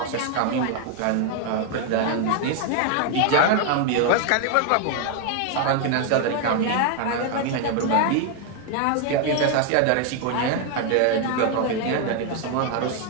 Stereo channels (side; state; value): both; different; correlation 0.01